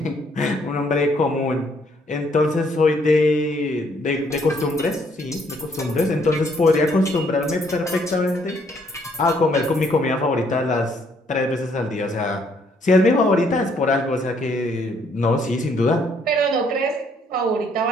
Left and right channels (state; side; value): normal; both; correlation 0.67